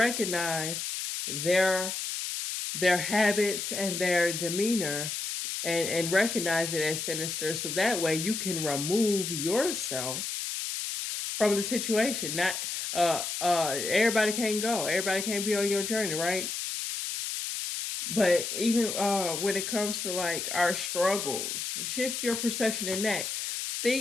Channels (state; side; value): noise; left; hiss, 3 dB below the sound